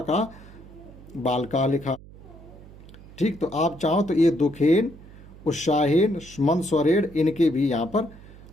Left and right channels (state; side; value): noise; right; hum, 19 dB below the sound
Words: का बालका लिखा। ठीक, तो आप चाहो तो ये दुखेन, उत्साहीन, मंद स्वरेण इनके भी यहाँ पर